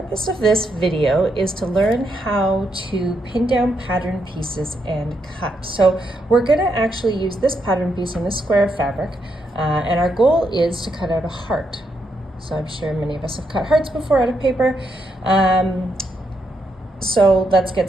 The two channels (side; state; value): both; normal; correlation 0.80